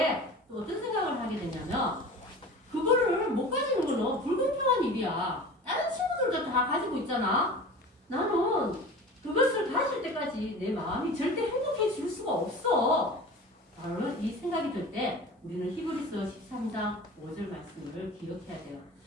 또 어떤 생각을 하게 되냐면 그거를 못 가지는 거는 불공평한 일이야. 다른 친구들도 다 가지고 있잖아. 나는 그것을 가질 때까지 내 마음이 절대 행복해질 수가 없어. 바로 이 생각이 들 때 우리는 히브리서 13장 5절 말씀을 기억해야 돼요.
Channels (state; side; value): normal; both; correlation 0.37